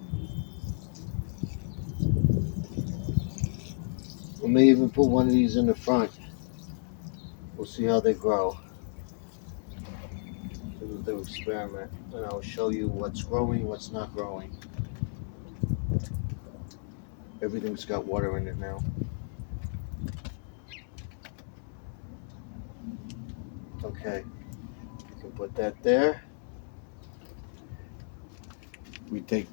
we may even put one of these in the front. We'll see how they grow. We'll do experiment, and I'll show you what's growing, what's not growing. Everything's got water in it now. Okay, you can put that there. We take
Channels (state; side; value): silent; right; digital silence